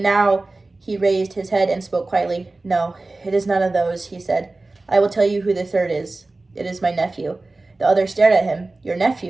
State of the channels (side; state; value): left; quieter; 3.2 dB